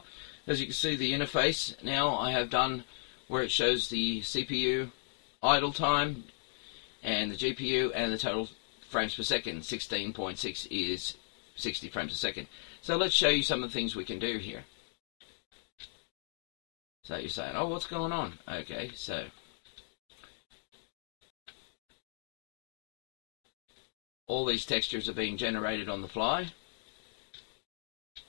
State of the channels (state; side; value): silent; right; digital silence